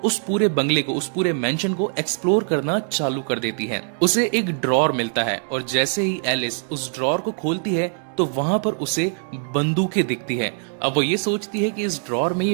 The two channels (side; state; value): left; silent; 55 dB below the other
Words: उस पूरे बंगले को, उस पूरे मेंशन को एक्सप्लोर करना चालू कर देती है। उसे एक ड्रॉर मिलता है और जैसे ही एलिस उस ड्रॉर को खोलती है तो वहां पर उसे बंदूकें दिखती है। अब वो ये सोचती है कि इस ड्रॉर में ये